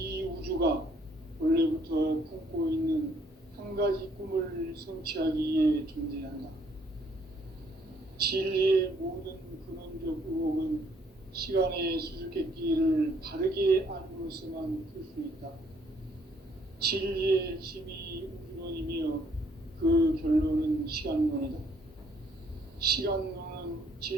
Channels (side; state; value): both; normal; correlation 0.65